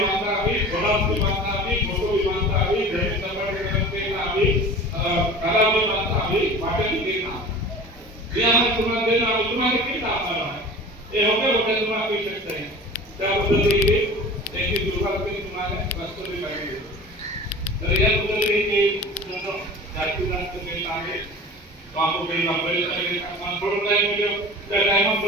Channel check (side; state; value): both; normal; correlation 0.38